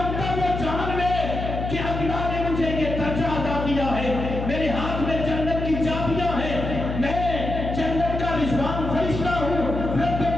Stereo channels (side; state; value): left; noise; hum, 4 dB below the sound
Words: وہ جان لے کہ اللہ نے مجھے یہ درجہ عطا کیا ہے، میرے ہاتھ میں جنت کی چابیاں ہیں، میں جنت کا رضوان فرشتہ ہوں، رب